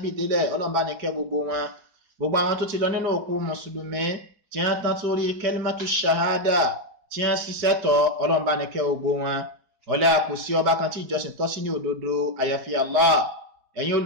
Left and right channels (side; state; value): left; late; 4.7 ms